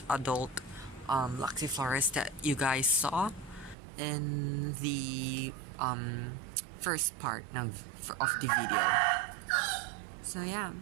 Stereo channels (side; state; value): left; drops out; at 3.8 s